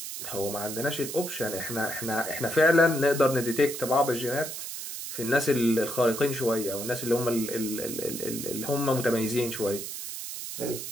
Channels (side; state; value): right; noise; hiss, 7 dB below the sound